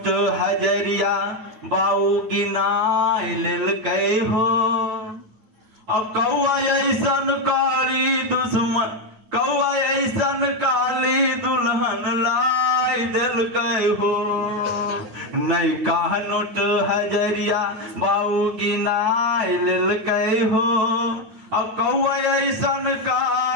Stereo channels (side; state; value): left; late; 9.3 ms